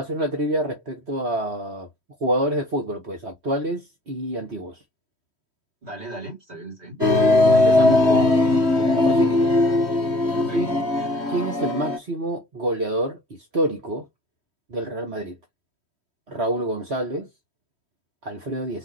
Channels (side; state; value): left; late; 3.1 ms